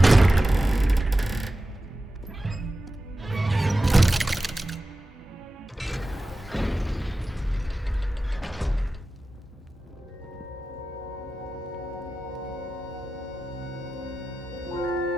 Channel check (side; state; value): both; normal; correlation 0.94